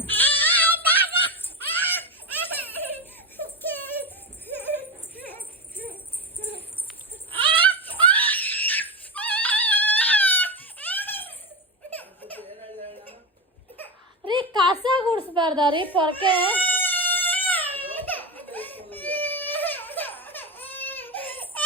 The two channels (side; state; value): both; normal; correlation 0.17